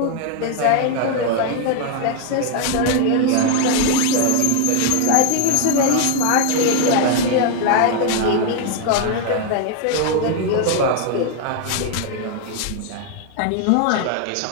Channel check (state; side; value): different; both; correlation 0.00